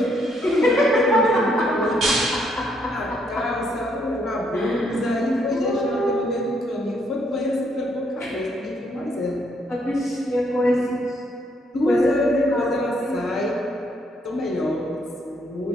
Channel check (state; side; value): normal; both; correlation 0.72